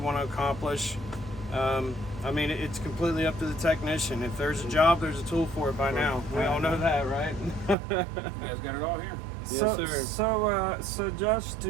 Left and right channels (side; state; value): left; drops out; at 7.8 s